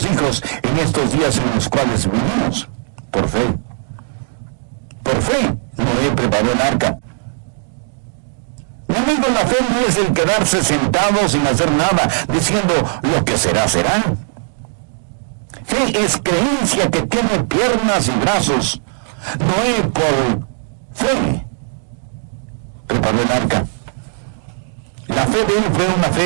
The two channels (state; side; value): silent; left; digital silence